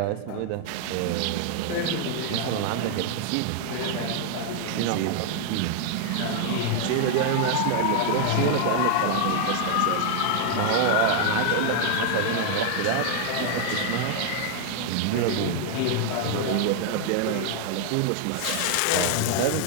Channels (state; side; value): different; both; correlation 0.00